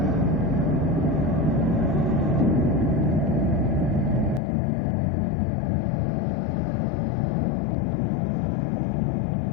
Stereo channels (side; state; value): right; drops out; at 4.4 s